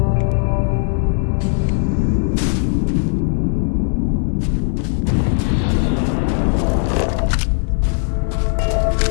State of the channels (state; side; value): silent; right; 56 dB below the other